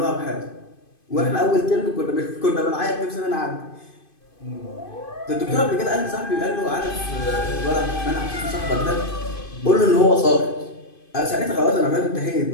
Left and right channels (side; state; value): right; late; 2.5 ms